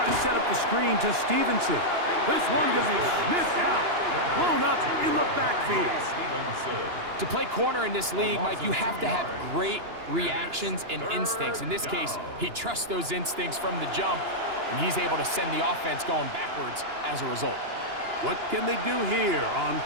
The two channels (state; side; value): late; left; 2.9 ms